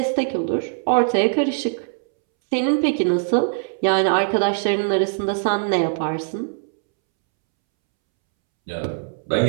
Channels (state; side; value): silent; left; 65 dB below the other